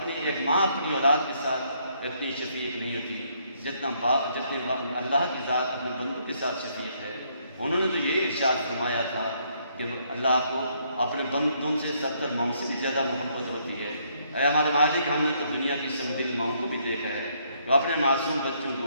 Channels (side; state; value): both; inverted; correlation -0.70